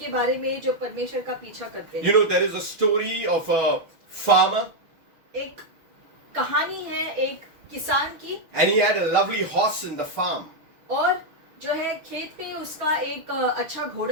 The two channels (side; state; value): left; late; 6.4 ms